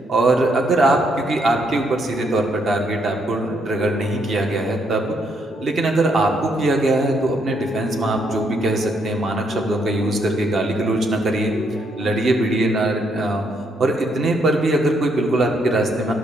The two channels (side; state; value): both; normal; correlation 0.74